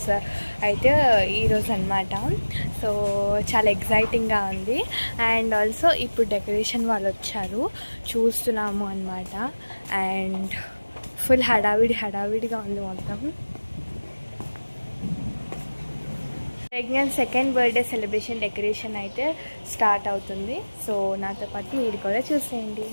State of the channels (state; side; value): inverted; both; correlation -1.00